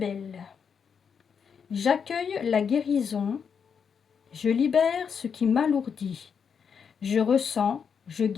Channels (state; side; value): quieter; right; 6.7 dB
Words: j'accueille la guérison. Je libère ce qui m'alourdit. Je ressens, je